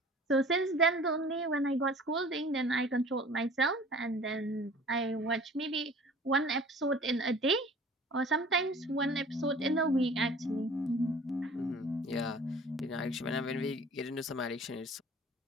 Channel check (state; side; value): normal; both; correlation 0.47